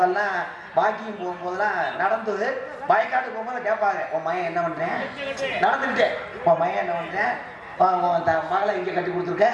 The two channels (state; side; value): identical; both; correlation 1.00